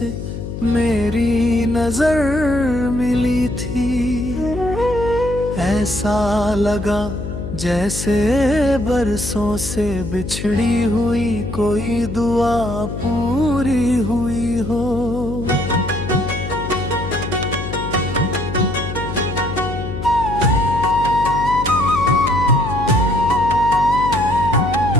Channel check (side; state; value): left; noise; hum, 7 dB below the sound